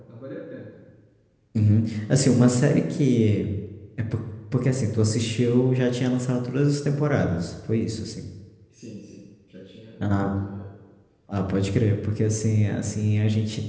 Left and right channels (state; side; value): identical; both; correlation 1.00